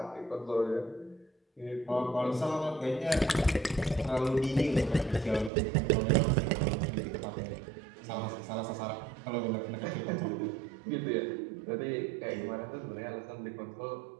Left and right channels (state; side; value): drops out; left; at 5.5 s